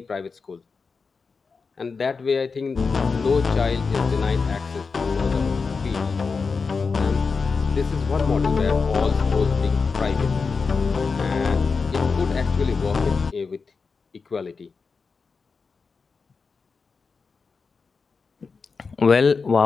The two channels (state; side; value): quieter; right; 4.8 dB